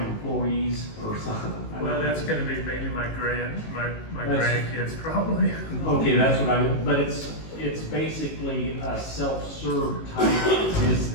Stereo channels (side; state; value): right; late; 18 ms